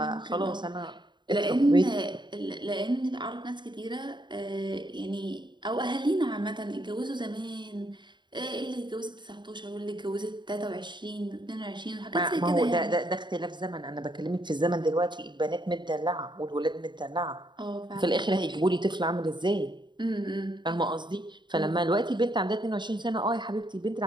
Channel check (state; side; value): late; left; 0.22 ms